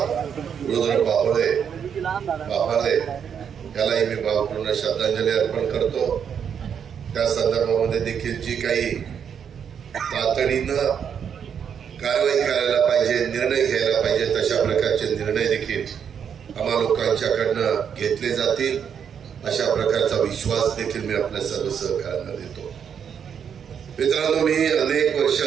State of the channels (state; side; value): quieter; left; 7.7 dB